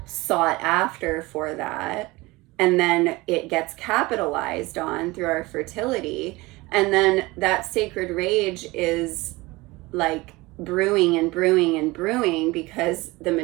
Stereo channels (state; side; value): quieter; left; 21.8 dB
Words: sought after for that. And then it gets capitalized on through our fertility. And then that sacred rage is like brewing and brewing and brewing because the